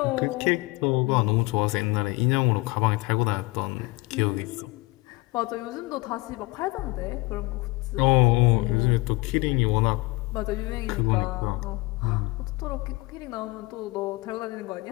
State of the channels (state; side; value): quieter; right; 23.5 dB